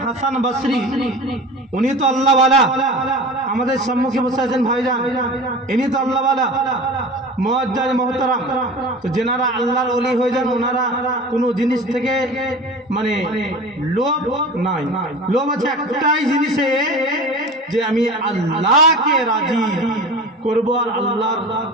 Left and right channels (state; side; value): normal; both; correlation 0.35